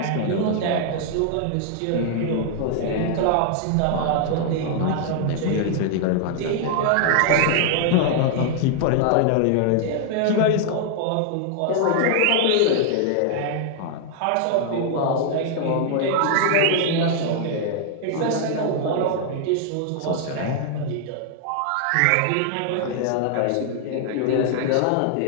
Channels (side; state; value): both; different; correlation -0.01